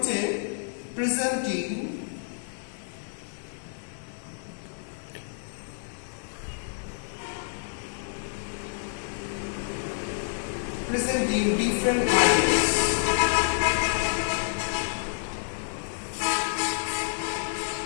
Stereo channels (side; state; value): right; silent; 59 dB below the other